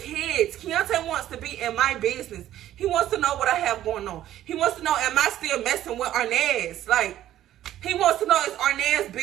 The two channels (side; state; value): left; quieter; 12.7 dB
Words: Keonte wants to be in my business. He wants to know what I have going on. He wants to know, am I still messing with Arnaz? Like, he wants to know, is Arnaz